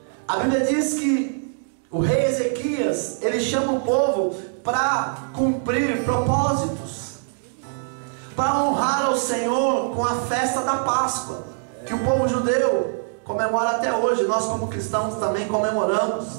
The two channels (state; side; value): silent; left; digital silence